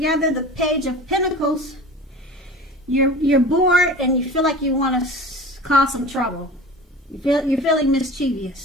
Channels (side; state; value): both; normal; correlation 0.36